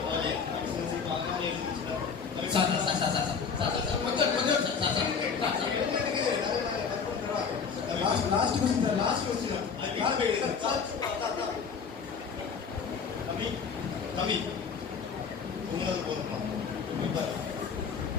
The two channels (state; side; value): quieter; right; 5.9 dB